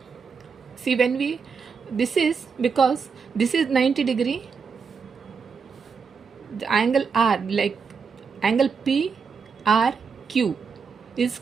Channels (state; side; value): quieter; left; 5.7 dB